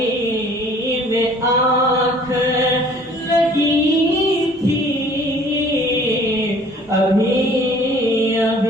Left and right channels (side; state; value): both; normal; correlation 0.53